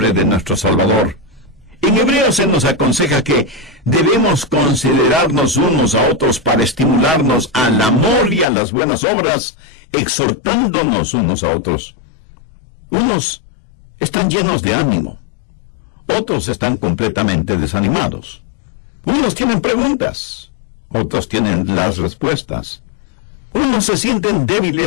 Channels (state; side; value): drops out; right; at 8.5 s